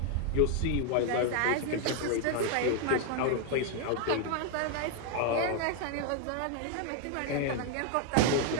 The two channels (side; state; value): both; different; correlation 0.01